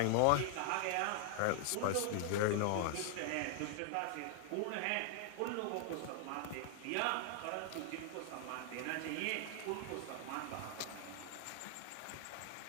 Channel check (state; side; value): different; both; correlation 0.00